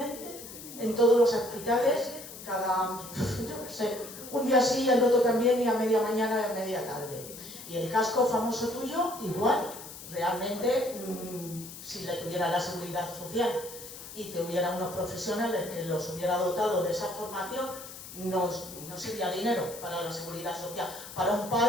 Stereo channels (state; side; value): noise; left; hiss, 13 dB below the sound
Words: en todos los hospitales, yo qué sé, un día sí, el otro también, y a media mañana y a media tarde. Y el casco famoso tuyo, igual. Realmente, si le tuviera la seguridad social y te hubiera unos profesionales que los hubiera dotado de esa formación, no sería dinero para la seguridad social. Para un